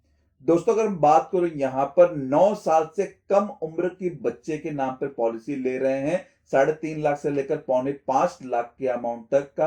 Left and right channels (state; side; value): identical; both; correlation 1.00